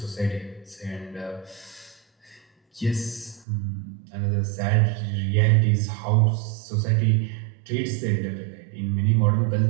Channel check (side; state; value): left; drops out; at 3.5 s